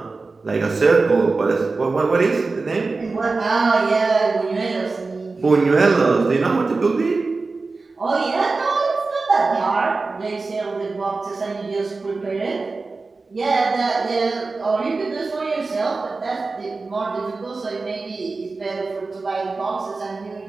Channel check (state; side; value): quieter; left; 3.9 dB